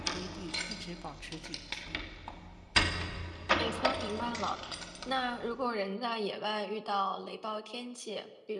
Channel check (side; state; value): both; identical; correlation 1.00